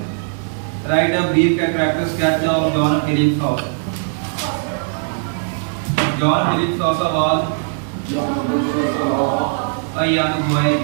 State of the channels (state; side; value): silent; left; digital silence